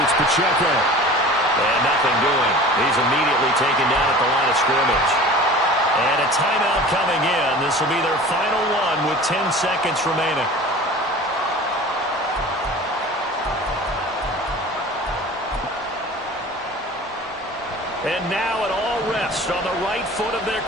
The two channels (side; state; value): both; normal; correlation 0.40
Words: it's Pacheco. And nothing doing. He's immediately taken down at the line of scrimmage. And a timeout coming in. This will be their final one with 10 seconds remaining. And now it all rests on the right foot of their